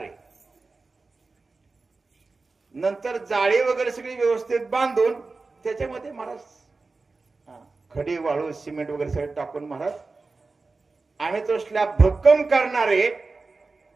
आहे, नंतर जाळी वगैरे सगळी व्यवस्थित बांधून त्याच्यामध्ये महाराज खडी वाळू सिमेंट वगैरे सगळं टाकून महाराज आम्ही तो स्लॅब भक्कम करणार आहे.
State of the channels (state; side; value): quieter; left; 3.8 dB